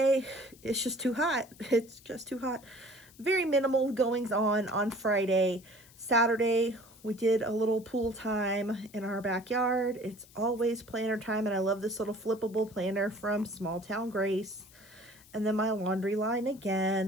it's just too hot. It's just too hot. Very minimal goings on Friday. Saturday, we did a little pool time in our backyard. It's always planner time, and I love this little flippable planner from Small Town Grace. And then my laundry line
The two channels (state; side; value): noise; left; hiss, 24 dB below the sound